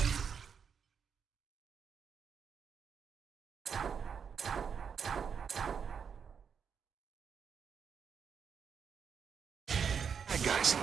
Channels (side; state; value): left; quieter; 6.8 dB